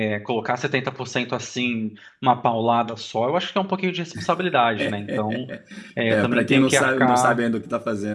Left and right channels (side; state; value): both; identical; correlation 1.00